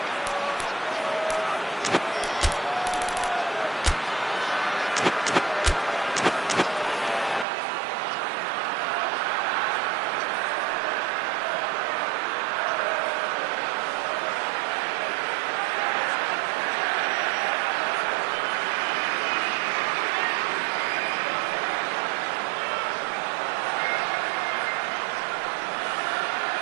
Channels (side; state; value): left; drops out; at 7.5 s